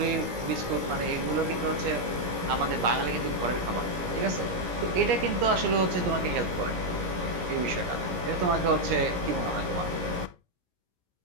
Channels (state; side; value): late; left; 17 ms